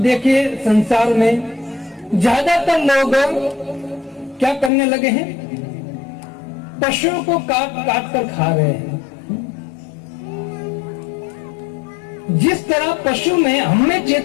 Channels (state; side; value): drops out; right; at 4.7 s